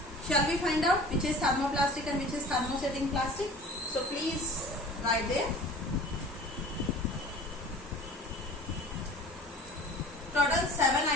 Shall we find out which is thermoplastic and which is thermosetting plastic? So please write there. Total 7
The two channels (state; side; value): normal; both; correlation 0.42